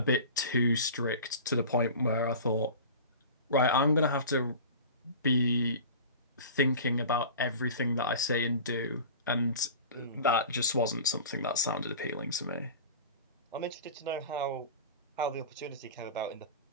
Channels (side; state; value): both; inverted; correlation -0.37